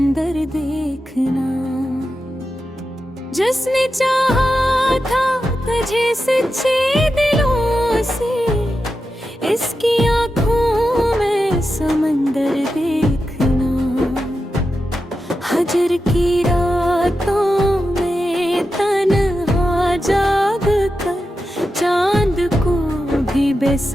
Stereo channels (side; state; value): both; normal; correlation 0.90